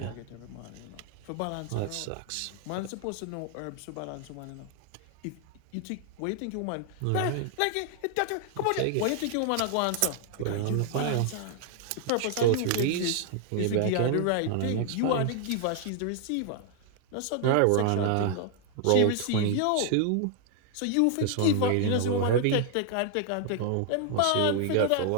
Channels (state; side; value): different; both; correlation 0.00